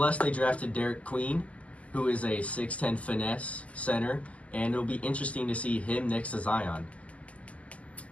they drafted Derek Queen, who is a 6'10 finesse center, and it'll be interesting to see him next to Zion.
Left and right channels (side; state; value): right; late; 0.066 ms